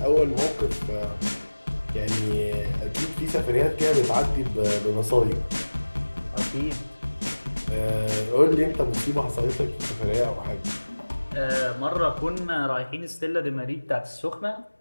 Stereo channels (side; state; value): both; inverted; correlation -1.00